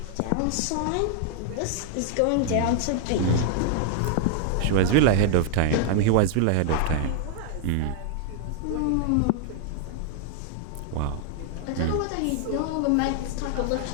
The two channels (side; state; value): both; different; correlation 0.00